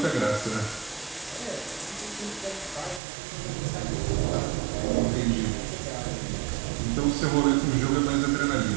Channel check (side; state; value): left; drops out; at 3.0 s